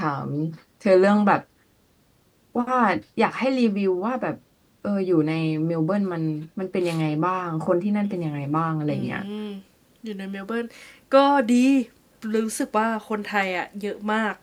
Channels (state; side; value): identical; both; correlation 1.00